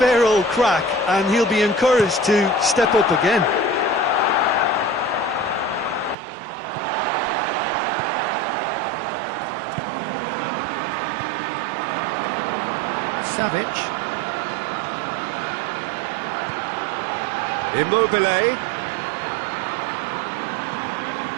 old crack, and he'll be encouraged to step up again. Savic. Immobile.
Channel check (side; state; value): left; drops out; at 6.2 s